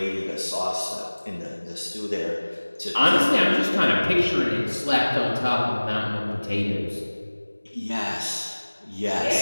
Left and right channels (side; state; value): both; inverted; correlation -1.00